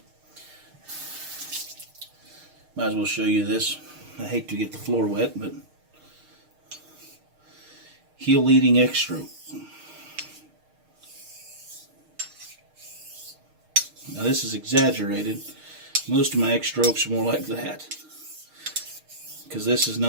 might as well show you this. I hate to get the floor wet, but heel leading X stroke. Now this is exaggerated. Most of my X strokes are more like that, because this is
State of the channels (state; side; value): late; left; 6.5 ms